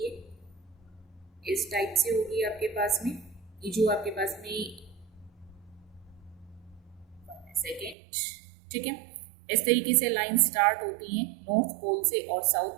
है, इस टाइप से होगी आपके पास में। ये जो आपके पास में सेकेंड, ठीक है, इस तरीके से लाइन स्टार्ट होती हैं नॉर्थ पोल से और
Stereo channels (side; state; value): left; drops out; at 8.0 s